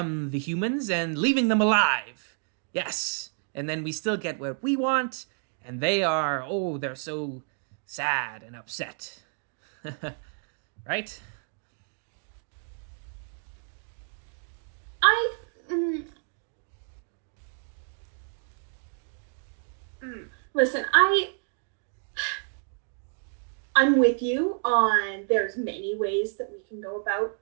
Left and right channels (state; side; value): silent; left; 56 dB below the other